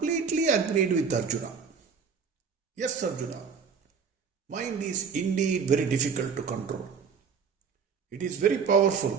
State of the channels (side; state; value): left; quieter; 6.1 dB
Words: agreed with Arjuna. Yes, Arjuna, mind is indeed very difficult to control. It is very